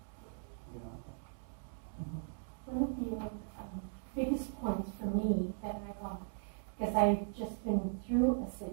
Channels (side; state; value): left; silent; digital silence